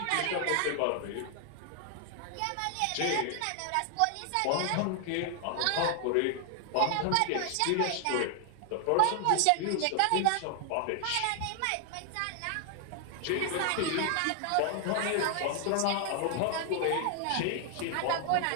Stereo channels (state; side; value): different; both; correlation 0.00